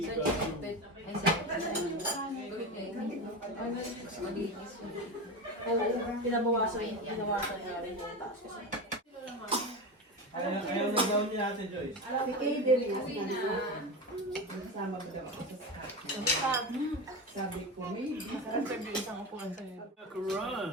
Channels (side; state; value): both; normal; correlation 0.21